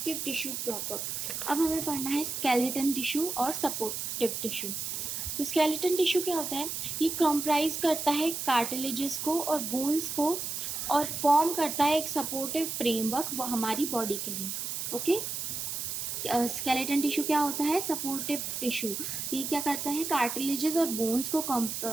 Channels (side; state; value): right; noise; hiss, 4 dB below the sound